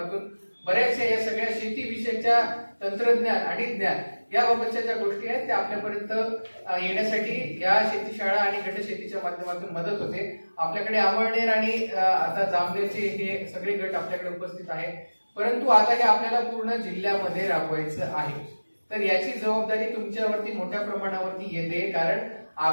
बऱ्याचशा या सगळ्या शेतीविषयीच्या तंत्रज्ञान आणि ज्ञान याबाबतच्या ज्या गोष्टी आहेत त्या आपल्यापर्यंत येण्यासाठी या शेती शाळा आणि गट शेतीच्या माध्यमातून मदत होते. आपल्याकडे अमळनेर आणि आता जामनेरचे हे सगळे गट आपल्याकडे उपस्थित आहेत. परंतु आता हे आपल्याला पूर्ण जिल्ह्यामध्ये राबवायचं आहे. तर याची जबाबदारी तुमच्यावरती मोठ्या प्रमाणावरती येते, कारण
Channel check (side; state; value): both; inverted; correlation -1.00